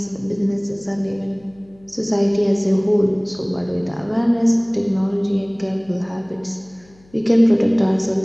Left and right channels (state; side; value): noise; left; hum, 29 dB below the sound